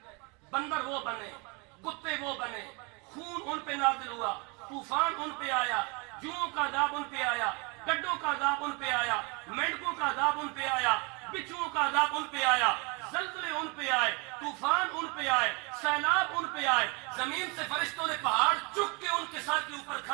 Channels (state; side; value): quieter; left; 30.4 dB